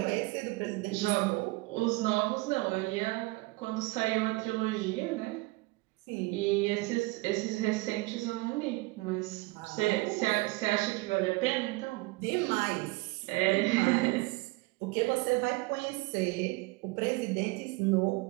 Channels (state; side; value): quieter; left; 23.3 dB